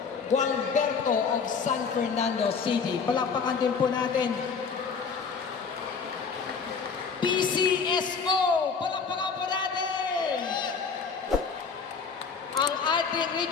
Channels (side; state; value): right; quieter; 5.5 dB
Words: Gualberto of San Fernando City. Palakpakan din po natin. PCSO! Palakpakan po natin! Ang ating